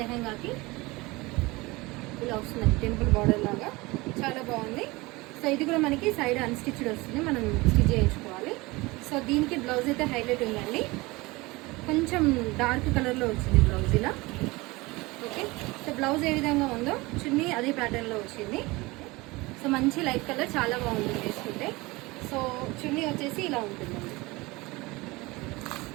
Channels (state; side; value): quieter; left; 22.6 dB